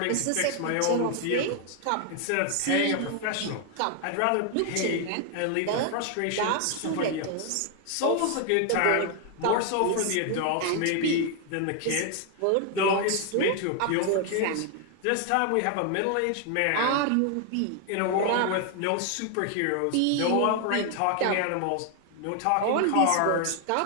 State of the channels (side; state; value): both; different; correlation 0.00